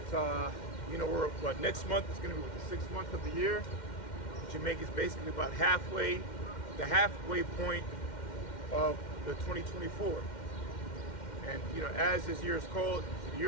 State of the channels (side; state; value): right; late; 2.1 ms